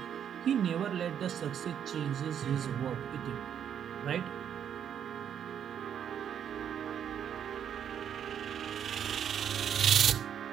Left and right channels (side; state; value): left; quieter; 8.8 dB